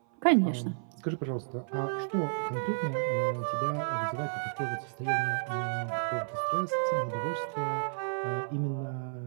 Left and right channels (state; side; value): silent; left; 57 dB below the other